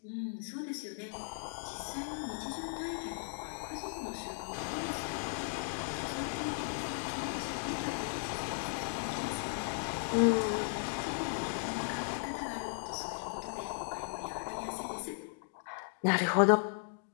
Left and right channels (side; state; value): right; silent; digital silence